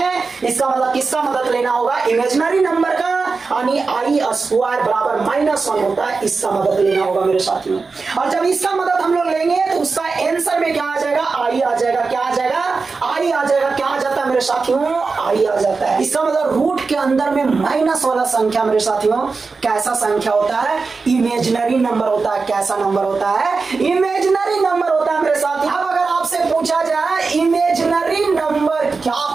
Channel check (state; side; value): quieter; left; 4.4 dB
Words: इसका मतलब किसका मदद लेना होगा? इमेजिनरी नंबर का। यानी आई स्क्वायर बराबर -1 होता है, इसका मदद लेना होगा मेरे साथियों। और जब इसका मदद हम लोग लेंगे तो उसका आंसर में क्या आ जाएगा? आई आ जाएगा। क्या आ जाएगा? आई आ जाएगा। क्या आ जाता है मेरे साथियों? आई आ जाता है। इसका मतलब रूट के अंदर में माइनस वाला संख्या मेरे साथियों कैसा संख्या होता है? इमेजिनरी नंबर होता है। कैसा नंबर होता है? इमेजिनरी नंबर होता है मेरे साथियों। अब अगर आपसे पूछा जाए इमेजिनरी नंबर नंबर क्या